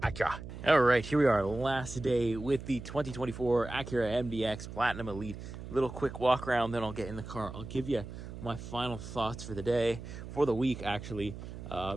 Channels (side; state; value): right; noise; hum, 11 dB below the sound